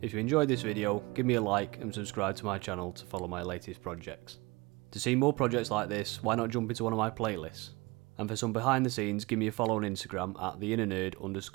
If you enjoyed this video, give me a like and subscribe to my channel to follow my latest projects. To see more projects like this, why not jump into one of my playlists? And for some behind the scenes, give me a follow on Instagram at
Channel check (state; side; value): quieter; left; 24.1 dB